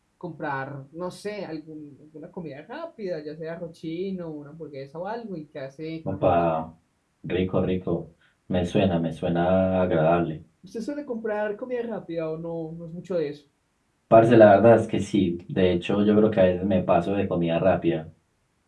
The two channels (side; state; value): both; identical; correlation 1.00